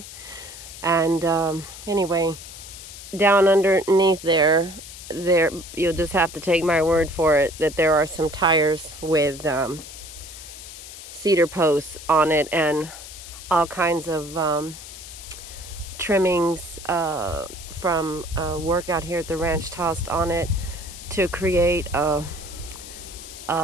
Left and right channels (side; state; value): left; noise; hiss, 14 dB below the sound